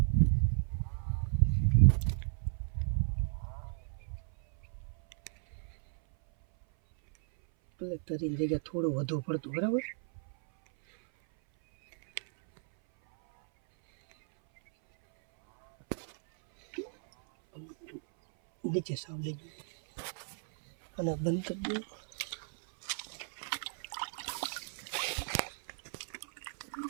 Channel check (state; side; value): silent; left; 55 dB below the other